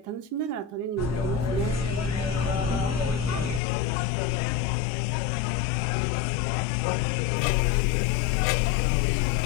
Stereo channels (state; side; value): drops out; right; at 3.6 s